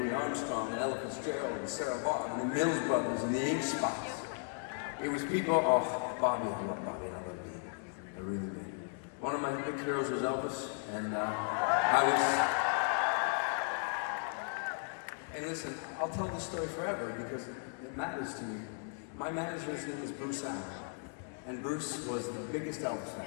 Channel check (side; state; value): right; silent; 54 dB below the other